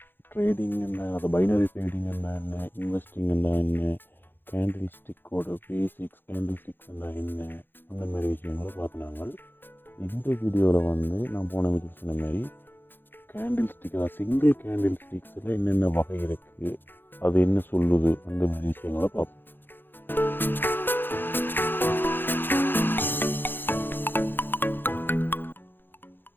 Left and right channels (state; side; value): late; right; 0.098 ms